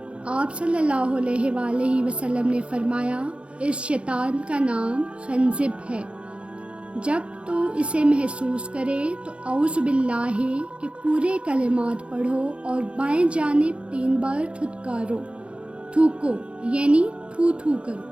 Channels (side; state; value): left; late; 0.059 ms